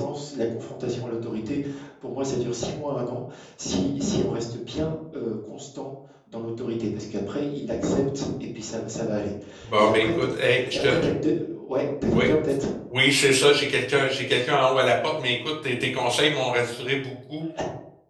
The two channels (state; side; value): identical; both; correlation 1.00